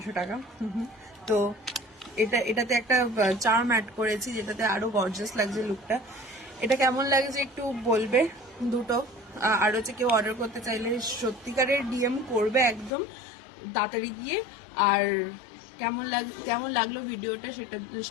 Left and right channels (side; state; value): right; drops out; at 12.9 s